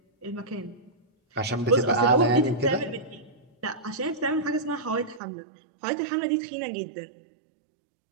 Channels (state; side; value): drops out; left; at 5.2 s